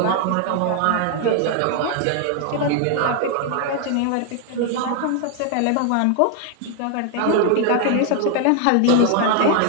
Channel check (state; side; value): different; both; correlation 0.00